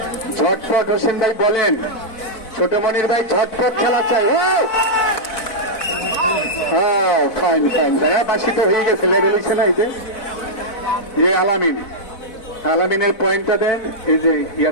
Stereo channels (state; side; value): late; right; 4.0 ms